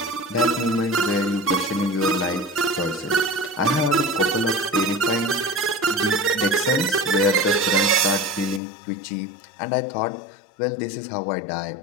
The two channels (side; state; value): right; drops out; at 8.6 s